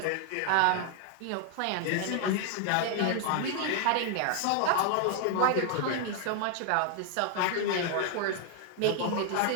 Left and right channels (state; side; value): different; both; correlation 0.00